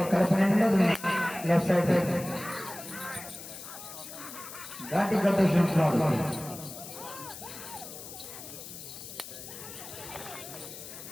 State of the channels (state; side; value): noise; left; hiss, 12 dB below the sound